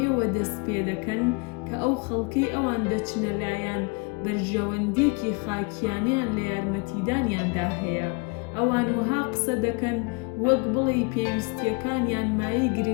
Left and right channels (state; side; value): quieter; right; 31.1 dB